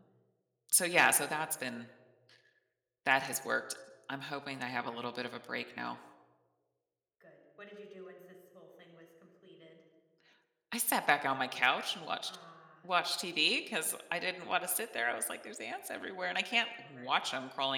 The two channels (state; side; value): identical; both; correlation 1.00